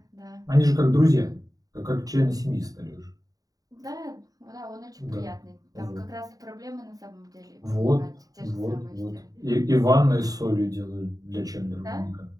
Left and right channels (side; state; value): left; late; 0.18 ms